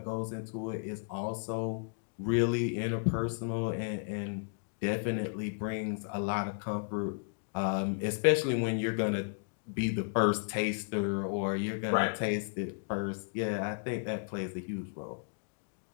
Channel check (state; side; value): silent; right; digital silence